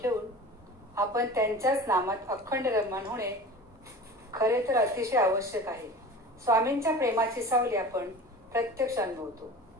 ठेवून आपण त्यांच्याच नामात अखंड रममाण होणे खरे तर अतिशय आवश्यक आहे। स्वामींच्या प्रेमाची सावली आपण प्रत्यक्ष अनुभवतो,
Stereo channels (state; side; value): normal; both; correlation 0.37